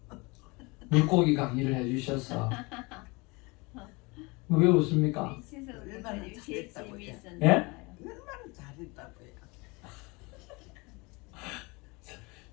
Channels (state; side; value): quieter; right; 26.3 dB